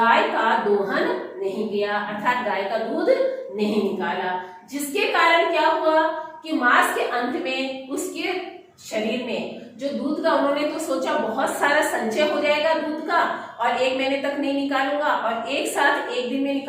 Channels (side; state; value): both; identical; correlation 1.00